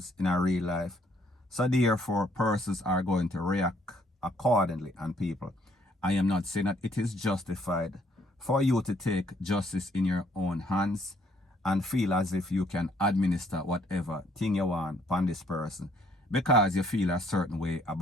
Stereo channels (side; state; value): both; normal; correlation 0.66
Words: in our real life. So therefore, persons are going to react accordingly. And people, I am not saying that it is justified for you to take justice in your own hands and feel as if you can administer whatever thing you want upon this person because you feel a certain way